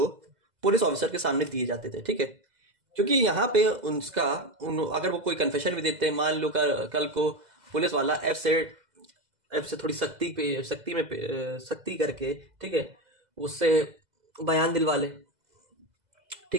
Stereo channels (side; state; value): left; late; 2.0 ms